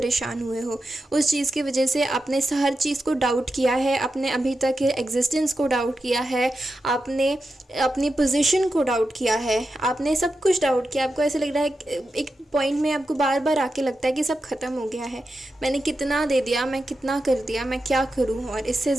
हुए हो। उस चीज़ की वजह से आपने हर चीज़ को डाउट किया है, आपने अभी तक के एग्जिस्टेंस को डाउट किया है, आपने अपनी पोजीशन को डाउट किया है, आपने सब कुछ डाउट किया। आपको ऐसा लग रहा है, एक पॉइंट में आपको बार बार आके लगता है कि सब ख़त्म हो गया है, मैंने कितना दे दिया, मैं कितना कर दिया, मैं क्या करूँ और इससे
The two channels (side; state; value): both; normal; correlation 0.89